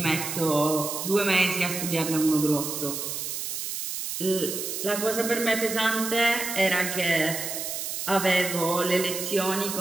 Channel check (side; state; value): right; noise; hiss, 4 dB below the sound